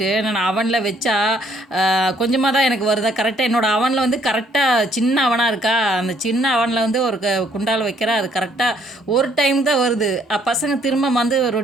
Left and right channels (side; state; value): both; normal; correlation 0.66